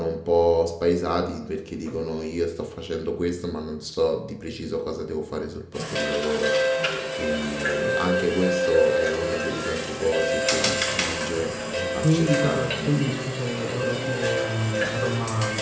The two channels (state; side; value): identical; both; correlation 1.00